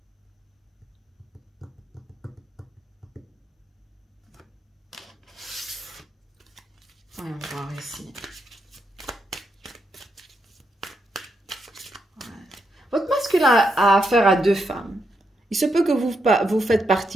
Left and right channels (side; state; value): both; normal; correlation 0.81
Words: Voyons voir ici. Votre masculin a affaire à 2 femmes. Il se peut que vous faites